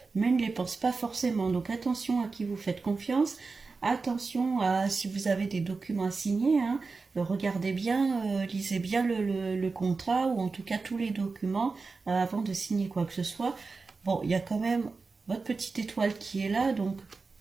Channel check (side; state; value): left; quieter; 4.2 dB